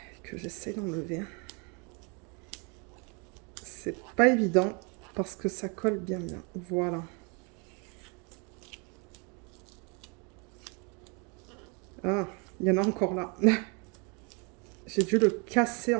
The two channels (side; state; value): left; quieter; 33.1 dB